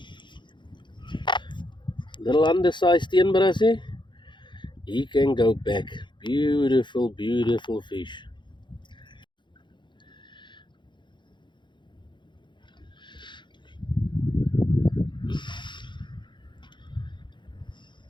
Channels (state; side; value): late; right; 0.23 ms